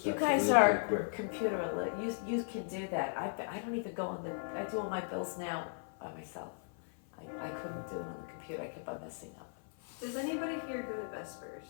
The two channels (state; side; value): silent; right; 53 dB below the other